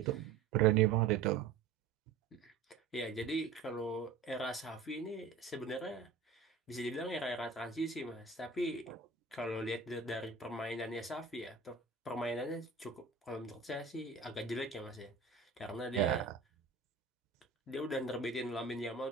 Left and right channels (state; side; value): quieter; left; 5.1 dB